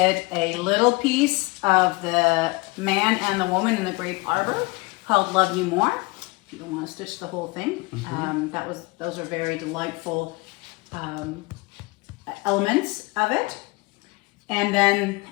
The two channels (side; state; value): right; quieter; 25.3 dB